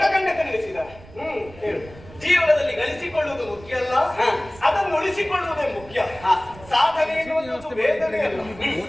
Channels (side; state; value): right; noise; rumble, 20 dB below the sound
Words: ನಡೆಸಿದ. ಹೇಳು. ಜೀವನದಲ್ಲಿ ಗಳಿಸಿಕೊಳ್ಳುವುದು ಮುಖ್ಯ ಅಲ್ಲ, ಅದನ್ನು ಉಳಿಸಿಕೊಳ್ಳುವುದೇ ಮುಖ್ಯ. ಸಾಧನೆ ಎನ್ನುವುದು ವೇದನೆ ಅಲ್ಲ,